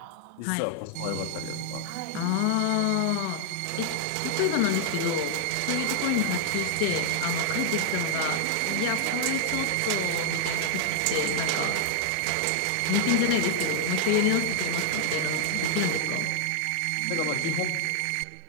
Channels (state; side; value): different; both; correlation 0.00